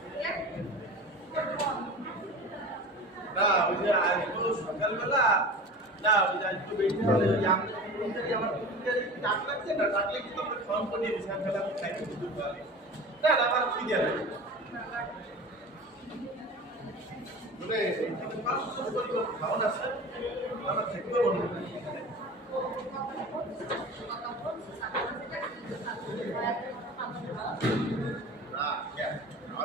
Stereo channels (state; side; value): normal; both; correlation 0.35